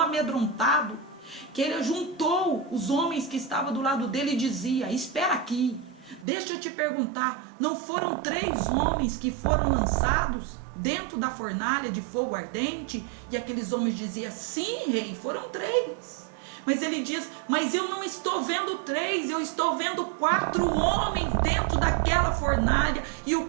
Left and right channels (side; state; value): left; drops out; at 6.2 s